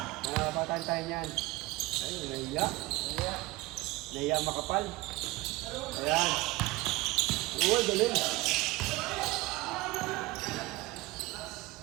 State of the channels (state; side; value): quieter; left; 20.4 dB